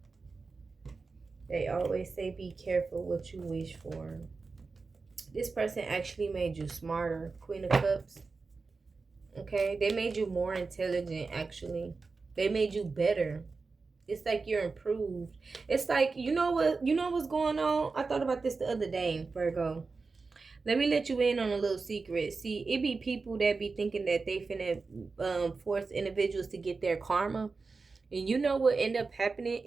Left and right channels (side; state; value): left; quieter; 4.2 dB